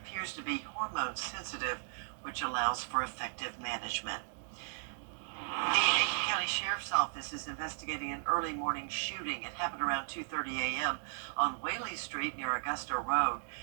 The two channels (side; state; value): left; silent; digital silence